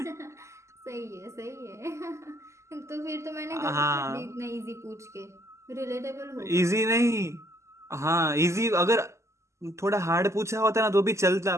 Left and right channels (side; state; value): left; late; 0.13 ms